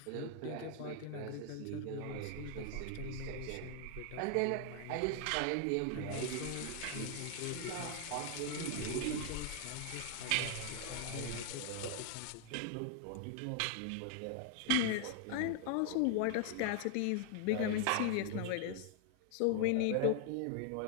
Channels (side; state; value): both; different; correlation 0.00